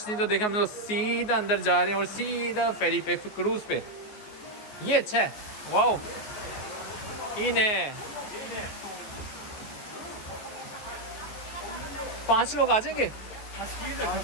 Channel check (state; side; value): late; right; 14 ms